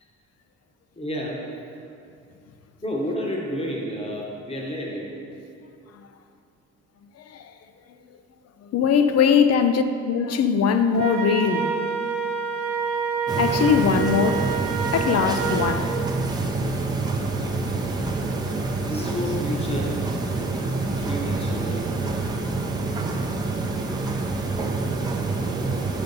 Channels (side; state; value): both; normal; correlation 0.36